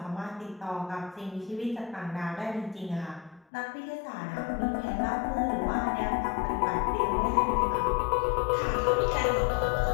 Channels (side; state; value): right; drops out; at 3.5 s